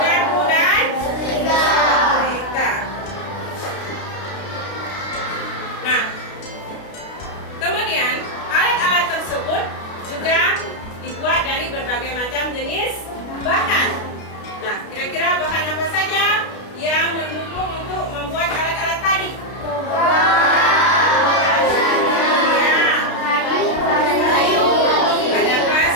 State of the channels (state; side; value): late; right; 32 ms